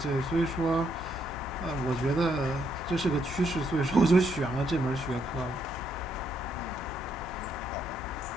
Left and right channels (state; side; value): noise; left; hum, 14 dB below the sound